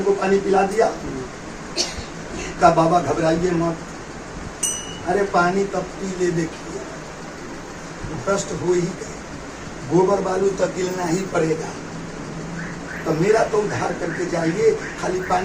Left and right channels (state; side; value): identical; both; correlation 1.00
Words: पानी पिला दिया। का बाबा घबराइए मत, अरे पानी तब पी ले, देखिए भ्रष्ट हो ही गए, गोबर बालू तो गिरना ही पड़ेगा। तो मेरा तो उद्धार करके जाइए, खाली